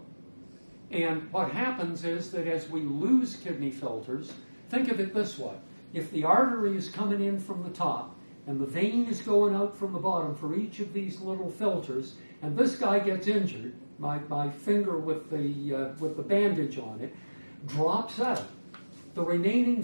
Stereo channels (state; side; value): inverted; both; correlation -1.00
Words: And what happens is that as we lose kidney filters, think of it this way. If the artery is coming in from the top and the vein is going out from the bottom for each of these little filters, and this guy gets injured, my finger with the bandage on it drops out, the remaining